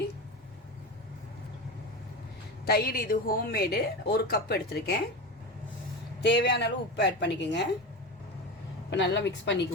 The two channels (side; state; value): both; normal; correlation 0.24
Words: தயிர் இது ஹோம்மேடு 1 கப் எடுத்திருக்கேன். தேவையான அளவு உப்பு ஆட் பண்ணிக்கோங்க. இப்போ நல்லா மிக்ஸ்